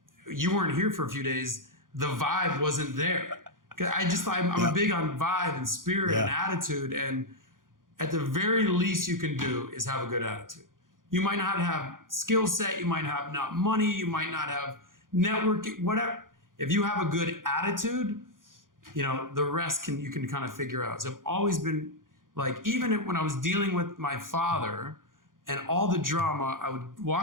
you weren't here for a few days. The vibe wasn't there. I'm a big on vibe and spirit and attitude. And at the very least you can do is have a good attitude. You might not have skill set. You might have not money. You might not have networking, whatever. If you have a good attitude, you know, the rest you can kind of figure out. So I've always been like, even when I was dealing with my father and all the drama, I would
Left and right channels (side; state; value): left; late; 0.90 ms